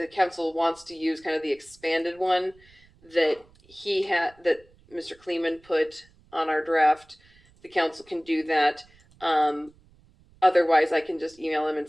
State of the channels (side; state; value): right; noise; rumble, 29 dB below the sound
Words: council wants to use kind of the expanded one that that Mr. Kleeman put on our draft, the council can do that. Otherwise, I can just email him and